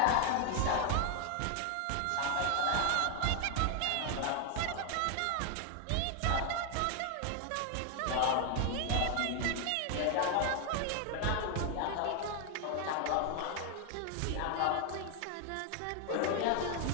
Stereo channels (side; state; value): both; different; correlation 0.00